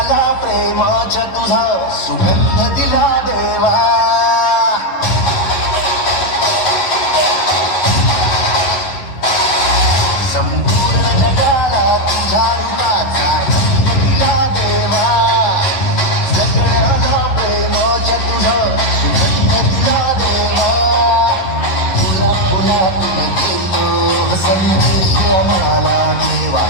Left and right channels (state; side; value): late; right; 11 ms